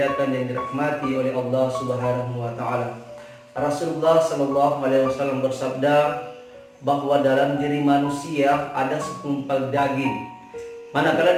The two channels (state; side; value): identical; both; correlation 1.00